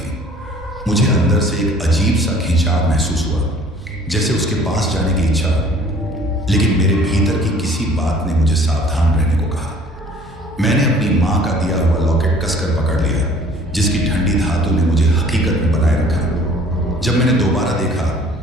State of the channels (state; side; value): normal; both; correlation 0.53